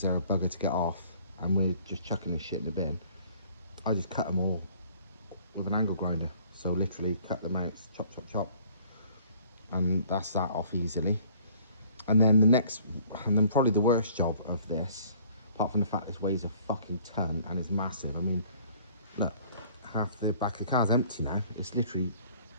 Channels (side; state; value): both; inverted; correlation -0.55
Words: they're a bugger to get off and we're just chucking this shit in the bin, I just cut them all with an angle grinder. So literally cut them out, chop chop chop, and that's that off easily. And then the next, and then probably the worst job of this, apart from the fact this weighs a fucking ton and is massive. I mean, look, half the back of the car's empty now. It's literally